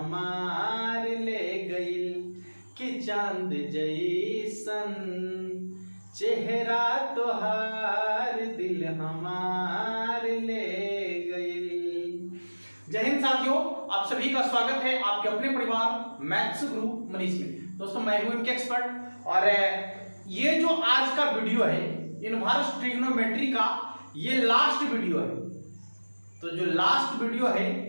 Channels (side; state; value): both; inverted; correlation -1.00